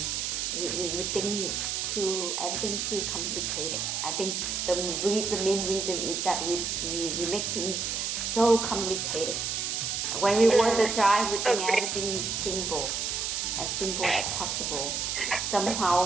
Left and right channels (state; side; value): noise; right; hiss, 1 dB below the sound